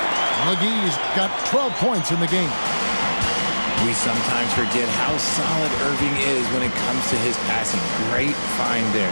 McGee's got 12 points in the game. We sometimes forget how solid Irving is when it comes to his passing. Great find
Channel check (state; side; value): inverted; both; correlation -1.00